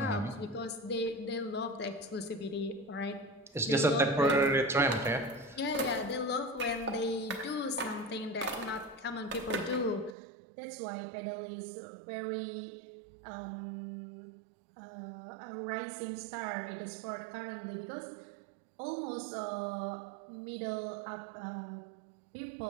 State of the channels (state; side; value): drops out; left; at 10.2 s